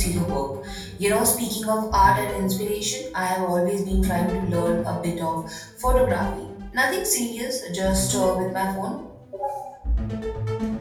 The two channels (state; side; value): identical; both; correlation 1.00